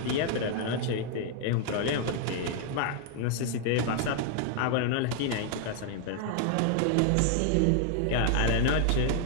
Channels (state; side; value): different; both; correlation 0.00